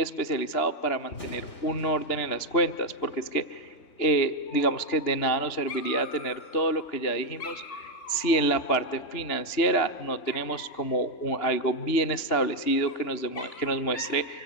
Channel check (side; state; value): right; late; 2.9 ms